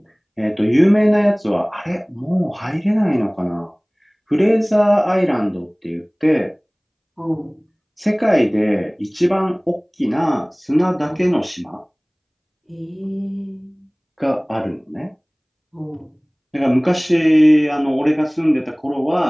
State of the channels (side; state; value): both; identical; correlation 1.00